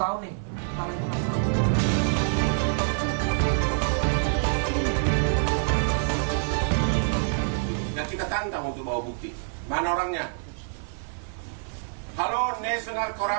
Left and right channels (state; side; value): silent; left; 57 dB below the other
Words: nih. Nah, kita tantang untuk bawa bukti. Mana orangnya? Halo National